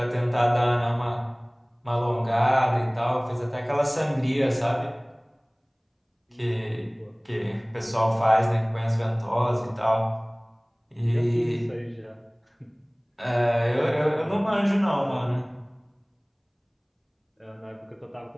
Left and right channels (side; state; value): both; identical; correlation 1.00